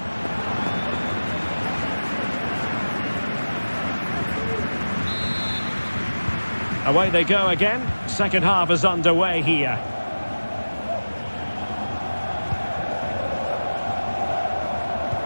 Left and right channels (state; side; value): inverted; both; correlation -1.00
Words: Away they go again. Second half is underway here.